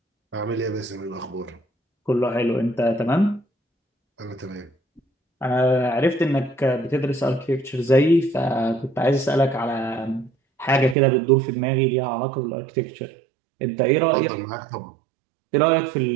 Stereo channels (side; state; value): left; drops out; at 11.0 s